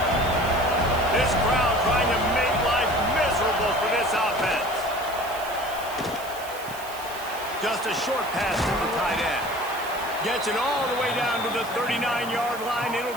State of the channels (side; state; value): right; noise; hiss, 15 dB below the sound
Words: This crowd trying to make life miserable for this offense. Just a short pass to the tight end. Gets it all the way down to the 39-yard line. It'll